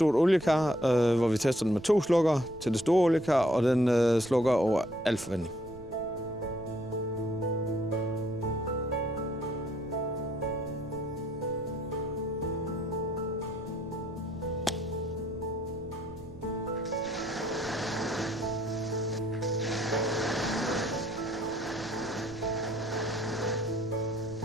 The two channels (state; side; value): noise; right; rumble, 18 dB below the sound